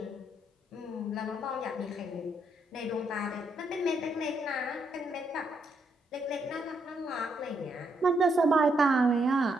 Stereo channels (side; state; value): both; normal; correlation 0.76